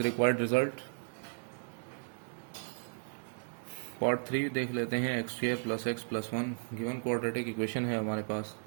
required result. Part 3 देख लेते हैं. X square plus x plus 1 given quadratic equation है हमारे पास.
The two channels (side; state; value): left; silent; digital silence